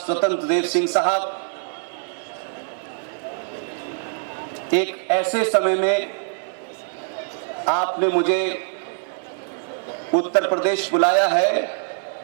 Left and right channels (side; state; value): left; silent; digital silence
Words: देव सिंह साहब, एक ऐसे समय में आपने मुझे उत्तर प्रदेश बुलाया है,